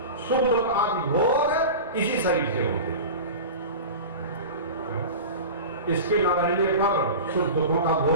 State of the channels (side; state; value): both; inverted; correlation -0.31